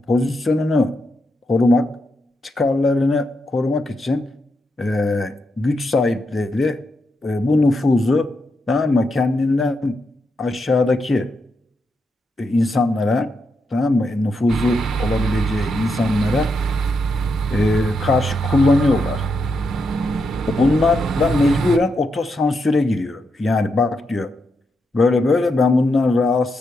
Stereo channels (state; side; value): normal; both; correlation 0.83